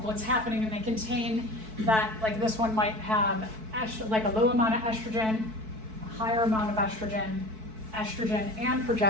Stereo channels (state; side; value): late; left; 4.6 ms